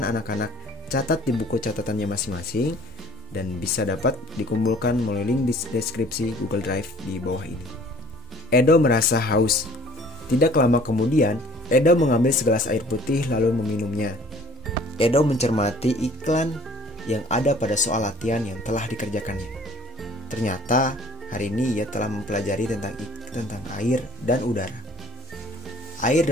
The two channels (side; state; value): both; normal; correlation 0.53